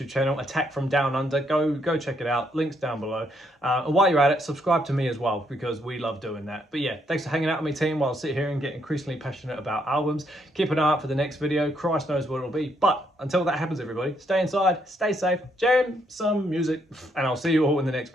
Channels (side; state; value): both; normal; correlation 0.74